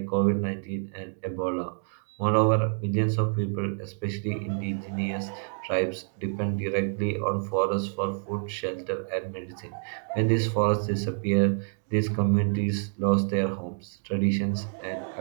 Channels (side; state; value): left; silent; 58 dB below the other